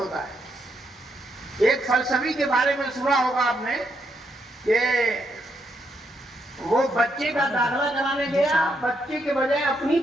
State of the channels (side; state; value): both; normal; correlation 0.78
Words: ہے. ایک فلسفی کے بارے میں سنا ہوگا آپ نے کہ وہ بچے کا داخلہ کرانے گیا، بچے کے بجائے اپنی